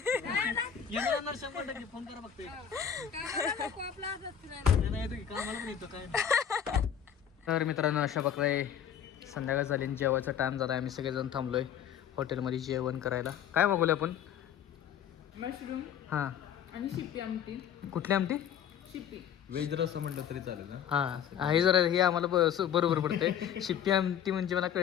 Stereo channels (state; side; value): quieter; right; 8.8 dB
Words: येणार 100% फोन करा फक्त. आपला असंच फिरायला. तर मित्रांनो अशा प्रकारे संध्याकाळ झाली आणि जेवायचा टाइम झाला. आम्ही सगळेजण थांबलोय हॉटेलमध्ये जेवण करायला. काय मागवले आपण. मशरूम हां आणि शिप्पी आमटी. कुठली आमटी. शिप्पी वेज रस्सा म्हटलं तरी चालेल ना. हां हे जरा हे आम्हाला बरोबर पडतंय. शिप्पी आमटी म्हणजे मला